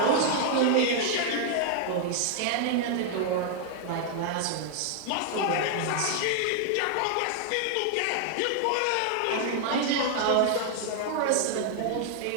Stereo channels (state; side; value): different; both; correlation 0.00